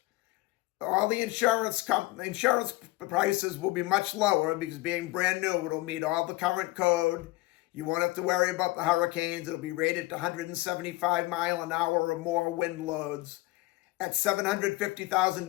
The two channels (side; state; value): right; quieter; 20.3 dB